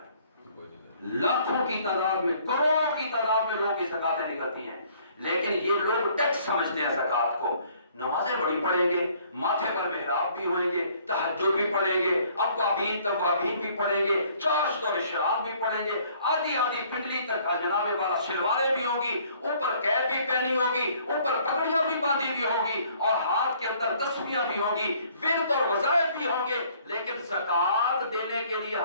لاکھوں کی تعداد میں، کروڑوں کی تعداد میں لوگوں کی زکوٰۃیں نکلتی ہیں، لیکن یہ لوگ ٹیکس سمجھتے ہیں زکوٰۃ کو۔ نمازیں بڑی پڑھیں گے، ماتھے پر محراب بھی ہوئیں گے، تہجد بھی پڑھیں گے، اوابین توابین بھی پڑھیں گے، چاشت اور اشراق بھی پڑھیں گے، آدھی آدھی پنڈلی تک جناب والا شلواریں بھی ہوں گی، اوپر کیپ بھی پہنی ہوگی، اوپر پگڑیاں بھی باندھی بھی ہوں گی، اور ہاتھ کے اندر تسبیحاں بھی ہوں گی، ورد اور وظائف بھی ہوں گے، لیکن زکوٰۃ دینے کے لیے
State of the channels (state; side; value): inverted; both; correlation -0.60